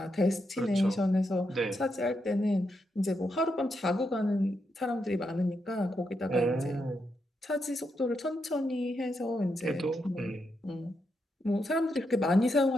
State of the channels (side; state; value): both; normal; correlation 0.83